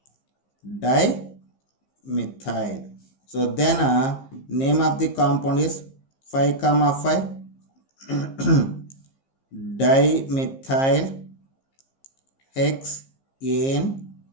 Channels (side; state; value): right; late; 15 ms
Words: dimethyl. So then name of the compound is 5,5 dimethyl